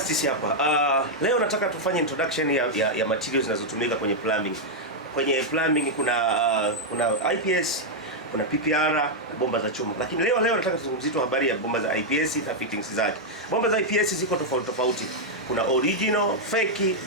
hapa. Leo nataka tufanye introduction ya materials zinazotumika kwenye plumbing. Kwenye plumbing kuna IPS, kuna PPR na bomba za chuma. Lakini leo nataka tuzungumzie tu habari ya bomba za IPS na fittings zake. Bomba za IPS ziko tofauti. Kuna original, fake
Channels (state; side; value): normal; both; correlation -0.03